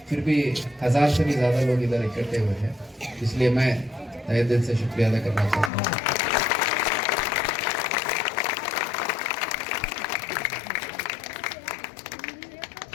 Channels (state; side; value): drops out; right; at 5.7 s